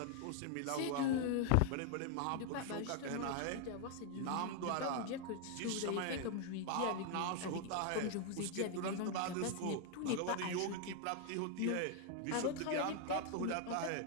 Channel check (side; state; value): both; different; correlation 0.00